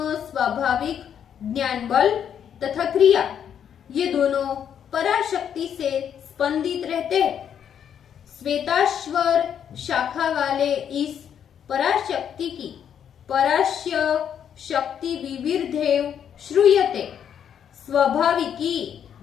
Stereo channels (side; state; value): right; quieter; 8.7 dB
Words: स्वाभाविक ज्ञान बल तथा क्रिया ये दोनों पराशक्ति से स्पंदित रहते हैं। श्वेताश्वर शाखा वाले इस पराशक्ति की परास्य शक्ति विविर्धेव श्रूयते स्वाभाविकी